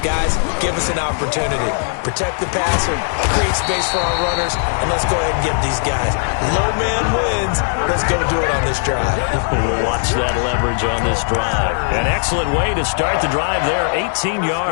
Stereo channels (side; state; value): right; silent; digital silence